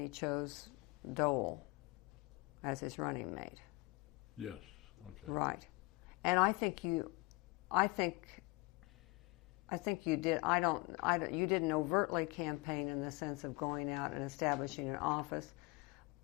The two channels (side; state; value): right; quieter; 25.2 dB